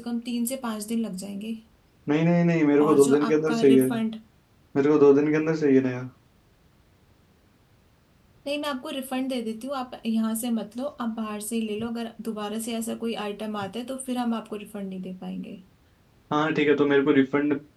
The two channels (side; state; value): both; identical; correlation 1.00